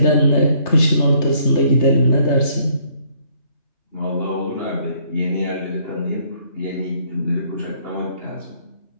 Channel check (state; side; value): late; right; 3.3 ms